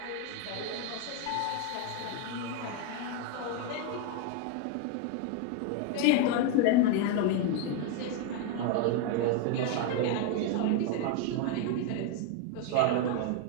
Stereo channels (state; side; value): different; both; correlation 0.01